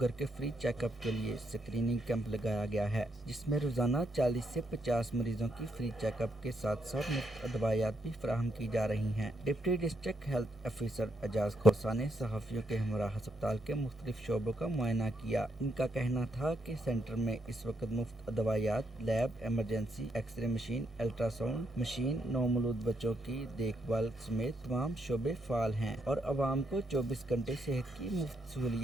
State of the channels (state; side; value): normal; both; correlation 0.78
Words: के फ्री चेकअप के लिए स्क्रीनिंग कैंप लगाया गया है, जिसमें रोजाना 40 से 50 मरीजों की फ्री चेकअप के साथ साथ मुफ्त दवाइयात भी फराहम की जा रही हैं। Deputy district health officer Ejaz Khosa ने सहाफ़ियों के हमरा अस्पताल के मुख्तलिफ शोबों का मुआयना किया। इनका कहना था कि सेंटर में इस वक्त मुफ्त दवाइयात, lab, emergency, x-ray machine, ultrasound machine, नौमौलूद बच्चों की देखभाल समेत तमाम शोबे फाल हैं और आवाम को 24 घंटे सेहत की मुफ्त